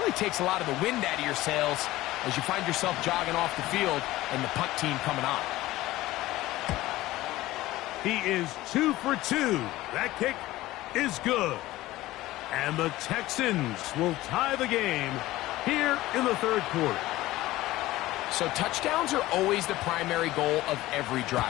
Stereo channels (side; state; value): right; quieter; 17.1 dB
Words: takes a lot of the wind out of your sails as you find yourself jogging off the field and the punt team coming on. He is 2 for 2. That kick is good. And the Texans will tie the game here in the third quarter. So touchdowns are always the primary goal of every